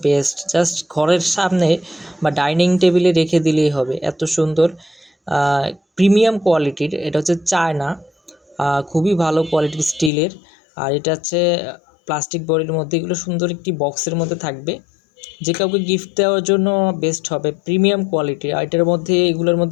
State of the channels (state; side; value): drops out; right; at 10.1 s